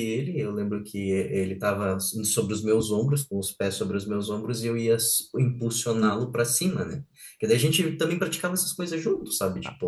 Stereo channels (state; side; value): identical; both; correlation 1.00